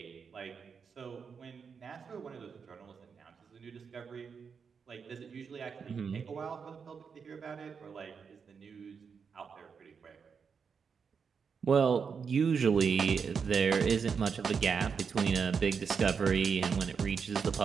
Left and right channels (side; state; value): left; quieter; 6.1 dB